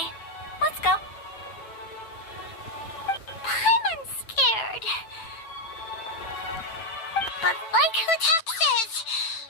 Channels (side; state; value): right; late; 9.0 ms